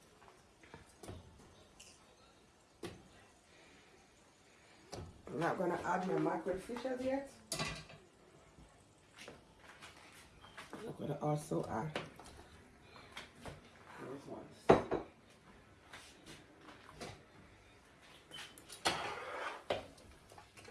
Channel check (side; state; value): both; identical; correlation 1.00